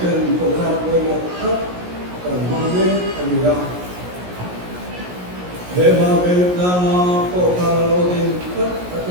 trận tổ chức với một tất cần mang đến anh ra để mà về ra tổ chức lâu tin tất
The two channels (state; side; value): late; left; 17 ms